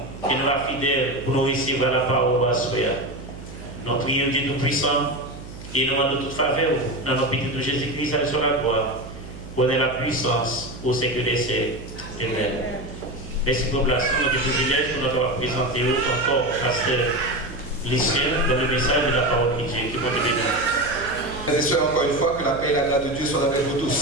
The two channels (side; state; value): right; noise; hum, 14 dB below the sound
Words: et nous va fidèles pour nous recevoir la parole à soi. Nous prions Dieu Tout-Puissant et nous demandons toute faveur dans notre petit de Jésus-Christ sur la gloire. Connaît la puissance au siècle des siècles. Amen. Merci pour la place, notre privilège pour nous présenter encore Pasteur Lucien dans le message de la parole de Dieu. Que bon Dieu bénisse. Frères et sœurs, encore une fois, que la paix et la grâce de Dieu soient avec vous